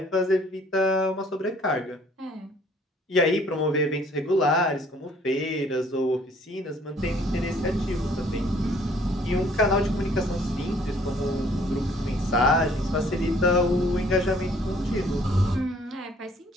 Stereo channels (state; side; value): normal; both; correlation 0.59